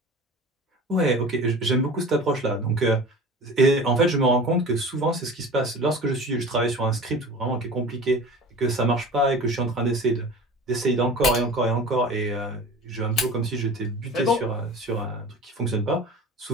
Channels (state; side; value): normal; both; correlation 0.37